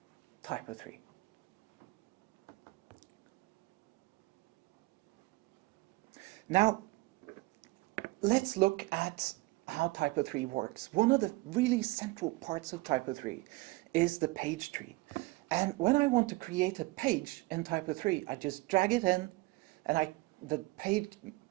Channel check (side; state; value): left; quieter; 22.4 dB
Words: TYPO3. Now, let's look at how TYPO3 works. One of the really central parts of TYPO3 is the page tree. And when I want to create a page in TYPO3, I just drag it in, and the